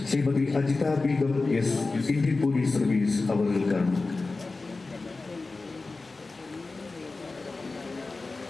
Shrimati Ajitha Begum S Indian police service അവர்களுக்காണ്.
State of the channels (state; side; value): quieter; right; 3.6 dB